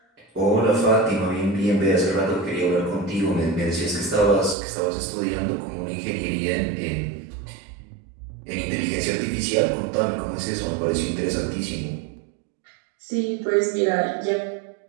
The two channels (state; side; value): drops out; left; at 4.5 s